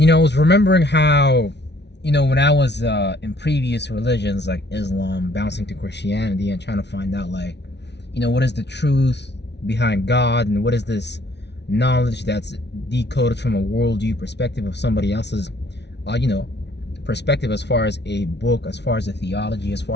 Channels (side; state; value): right; late; 0.50 ms